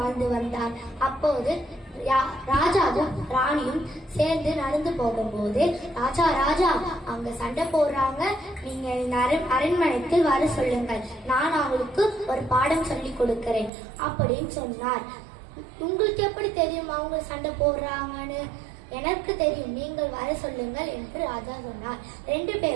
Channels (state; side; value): drops out; left; at 13.7 s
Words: வந்தார். அப்போது ராஜாவும் ராணியும் சேர்ந்து நடந்து போகும்போது, ராஜா அங்க சண்டை போடுறாங்க, நீங்க அரண்மனைக்கு வர சொல்லுங்கள், நான் அவங்களுக்கு ஒரு பாடம் சொல்லி கொடுக்கிறேன் அப்படின்னு சொன்னார். உங்களுக்கு எப்படி தெரியும் அவங்க சண்டை போடுறாங்கன்னு? எனக்கு தெரியும், நீங்கள் வர சொல்லுங்கள் என்று ராஜா சொன்னார். 2